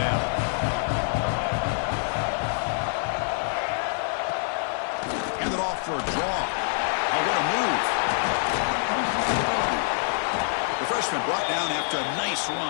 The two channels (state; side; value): silent; right; digital silence